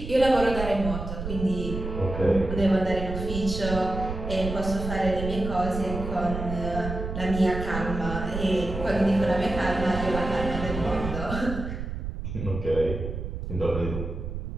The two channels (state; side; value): noise; right; rumble, 6 dB below the sound